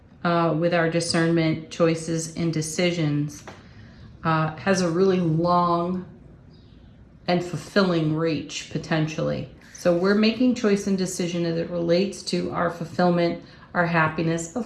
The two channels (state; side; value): identical; both; correlation 1.00